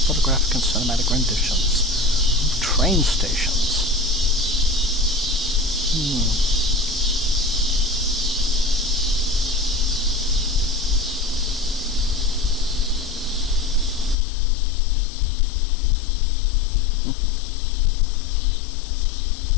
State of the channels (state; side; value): drops out; right; at 14.2 s